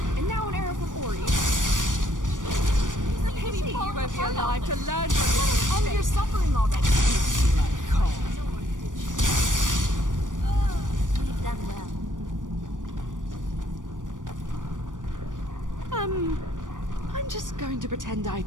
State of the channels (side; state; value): left; late; 0.88 ms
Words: And now an arrow from Ori. Maybe you won't be alive to learn from your mistakes. End your suffering already. We've done well. I'm just going to pretend I